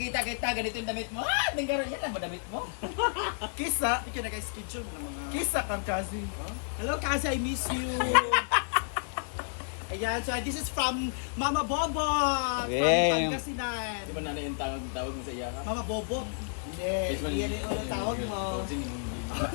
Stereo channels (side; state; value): right; silent; digital silence